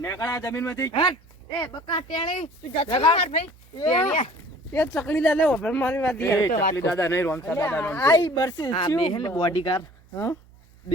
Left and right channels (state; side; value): noise; right; hum, 27 dB below the sound